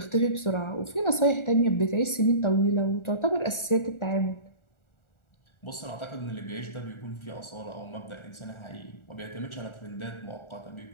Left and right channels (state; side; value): late; right; 1.4 ms